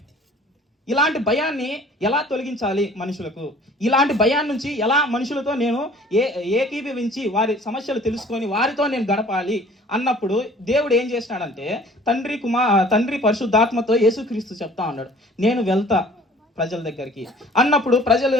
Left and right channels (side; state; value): both; normal; correlation 0.50